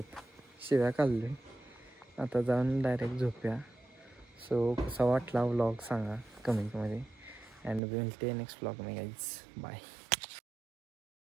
शिव्या काढले. आता जाऊन डायरेक्ट झोप्या. सो कसा वाटला व्लॉग सांगा कमेंटमध्ये. अँड विल टे नेक्स्ट व्लॉग मे गाईज. बाय.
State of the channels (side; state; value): left; drops out; at 7.8 s